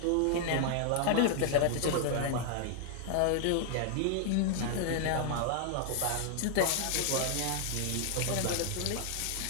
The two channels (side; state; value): both; different; correlation 0.00